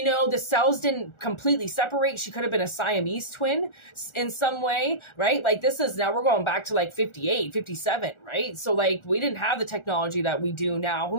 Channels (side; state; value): right; late; 1.4 ms